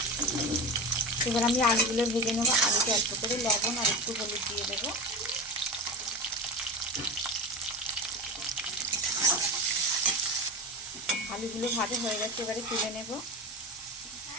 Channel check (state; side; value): normal; both; correlation 0.25